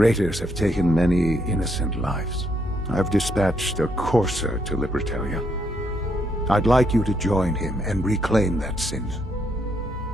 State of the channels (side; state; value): both; normal; correlation 0.74